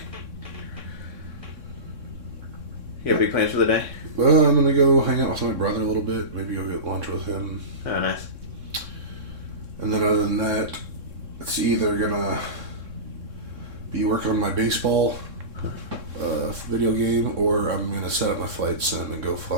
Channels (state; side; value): late; left; 3.6 ms